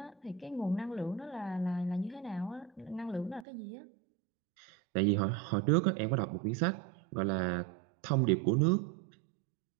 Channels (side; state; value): left; drops out; at 3.5 s